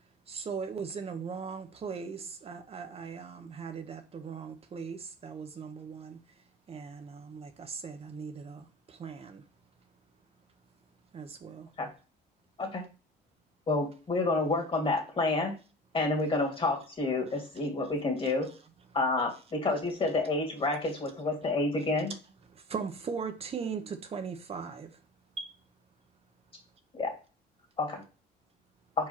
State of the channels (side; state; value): both; normal; correlation 0.37